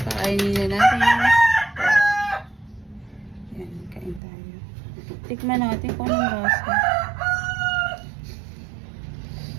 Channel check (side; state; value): left; drops out; at 4.2 s